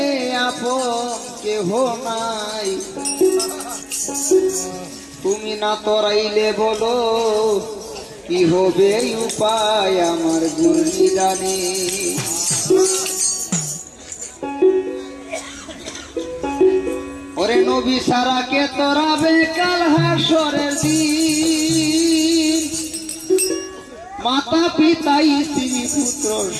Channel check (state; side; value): identical; both; correlation 1.00